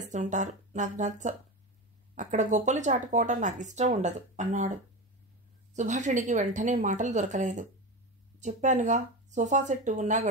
నాకు నచ్చ. అక్కడ గొప్పలు చాటుకోవటం నాకు ఇష్టం ఉండదు అన్నాడు. సుభాషిణికి వెంటనే మాటలు దొరకలేదు. చెప్పానుగా, సోఫా సెట్టు ఉన్నా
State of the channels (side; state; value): both; normal; correlation 0.22